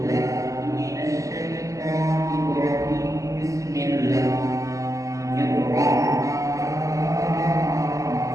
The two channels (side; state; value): left; late; 0.16 ms